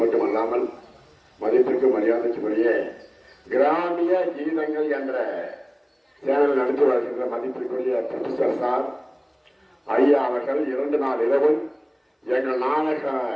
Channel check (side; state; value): both; identical; correlation 1.00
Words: மட்டும் அல்லாமல் மதிப்பிற்கு மரியாதைக்குரிய கிராமிய கீதங்கள் என்ற சேனல் நடத்தி வருகின்ற மதிப்பிற்குரிய ப்ரொஃபசர் சார் ஐயா அவர்கள் 2 நாள் இரவும் எங்கள் நாடக